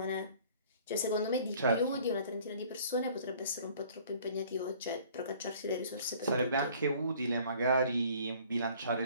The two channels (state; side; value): inverted; both; correlation -0.53